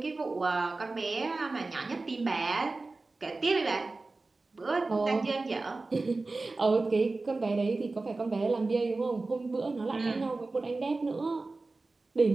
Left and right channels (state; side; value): quieter; left; 3.5 dB